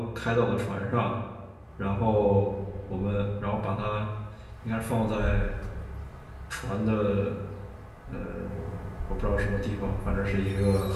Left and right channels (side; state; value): both; identical; correlation 1.00